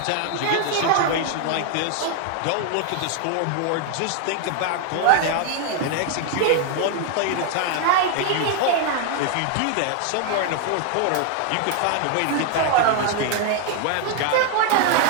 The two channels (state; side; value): different; both; correlation 0.00